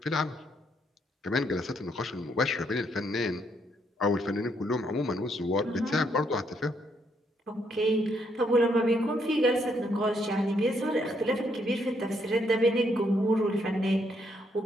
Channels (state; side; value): normal; both; correlation 0.74